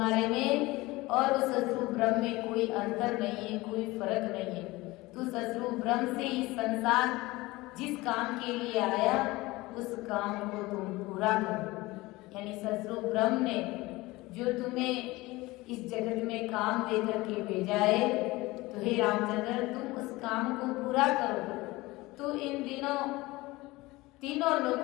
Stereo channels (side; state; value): right; quieter; 20.6 dB